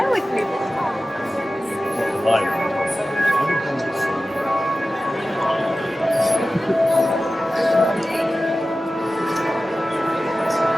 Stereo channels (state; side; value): normal; both; correlation 0.95